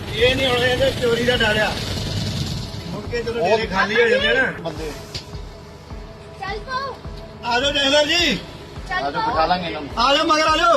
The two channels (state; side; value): identical; both; correlation 1.00